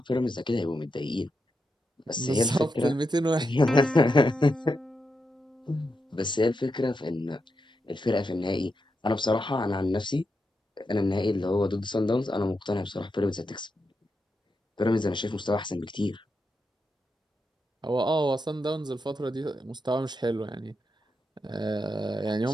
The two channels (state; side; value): normal; both; correlation 0.85